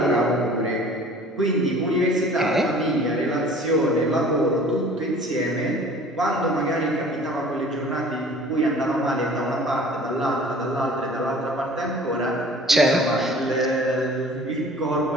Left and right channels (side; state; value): both; normal; correlation 0.48